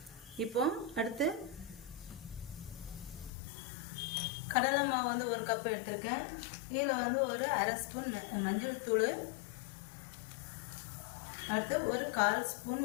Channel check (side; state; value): right; drops out; at 3.3 s